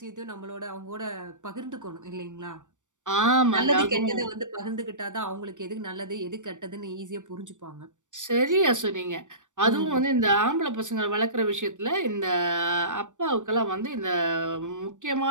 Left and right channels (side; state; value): left; late; 0.86 ms